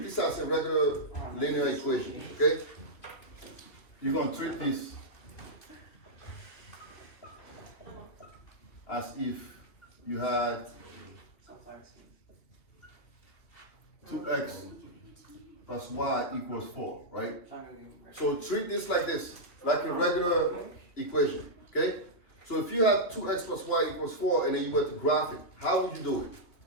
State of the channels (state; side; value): late; right; 2.9 ms